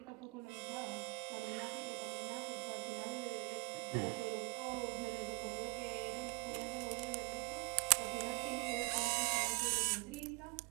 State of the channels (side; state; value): left; quieter; 30.1 dB